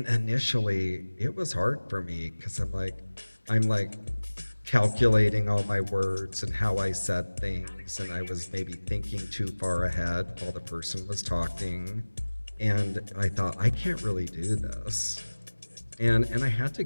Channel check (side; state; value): both; inverted; correlation -1.00